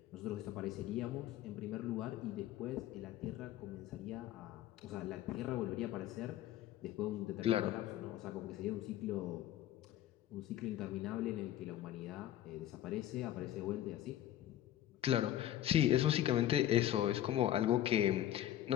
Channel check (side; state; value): right; quieter; 12.5 dB